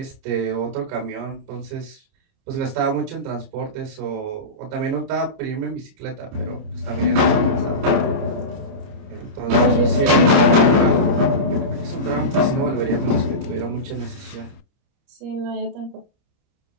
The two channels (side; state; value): left; late; 29 ms